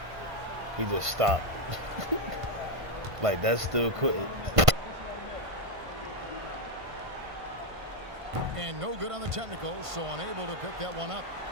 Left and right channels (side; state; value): left; late; 1.5 ms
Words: He just stopped. Like that's still quitting. And no good on the technical, so unable to pick that one up.